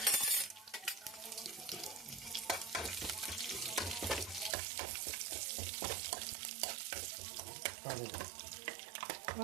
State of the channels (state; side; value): drops out; left; at 4.5 s